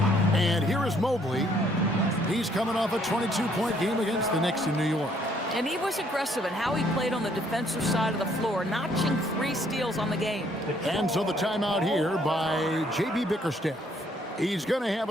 And here is Mobley. He's coming off a 22-point game against the Knicks in New York. And he was aggressive in how he played on the defensive side of the floor, notching 3 steals on the game. And so the timeout here by J.B. Bickerstaff. He's going to have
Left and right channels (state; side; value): normal; both; correlation 0.66